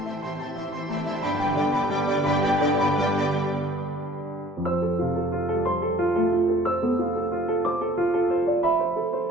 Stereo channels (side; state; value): both; normal; correlation 0.52